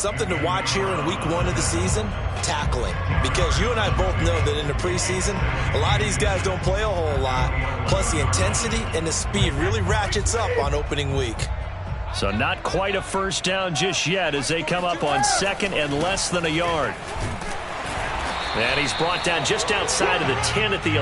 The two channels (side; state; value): both; identical; correlation 1.00